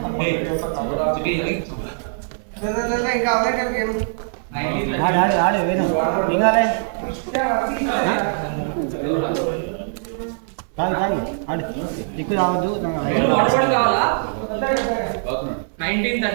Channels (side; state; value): left; silent; digital silence